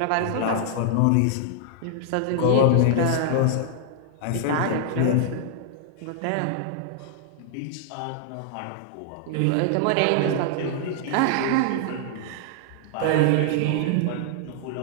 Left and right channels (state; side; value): different; both; correlation -0.01